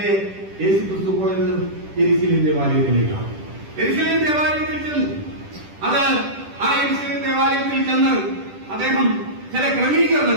യേശുക്രിസ്തു പോയത് യെരുശലേം ദേവാലയത്തിലേക്കാണ്. യെരുശലേം ദേവാലയത്തിൽ ചെന്നു. അത് ആ യെരുശലേം ദേവാലയത്തിൽ ചെന്ന് അദ്ദേഹം ചില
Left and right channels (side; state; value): left; late; 10 ms